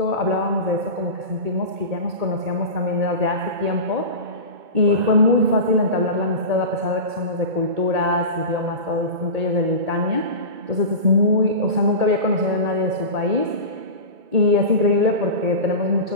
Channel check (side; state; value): left; late; 2.2 ms